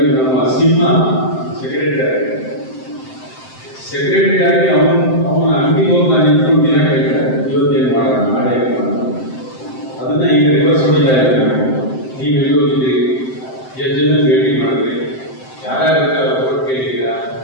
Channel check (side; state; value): right; late; 7.7 ms